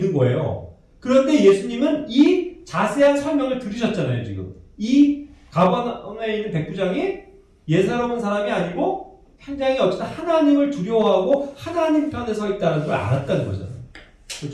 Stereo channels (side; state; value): both; identical; correlation 1.00